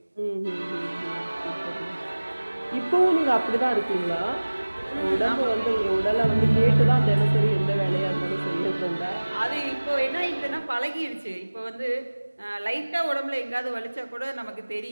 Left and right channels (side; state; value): both; inverted; correlation -1.00